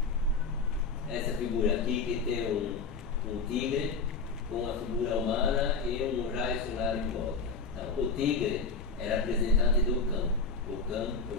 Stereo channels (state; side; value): quieter; right; 4.4 dB